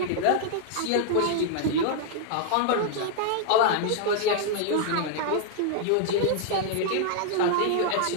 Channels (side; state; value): both; different; correlation -0.01